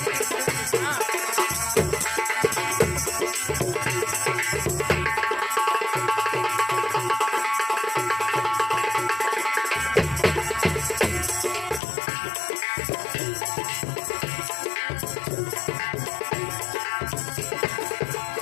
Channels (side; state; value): right; drops out; at 11.8 s